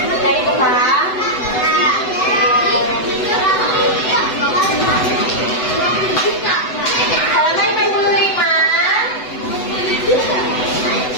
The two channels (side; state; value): right; late; 7.9 ms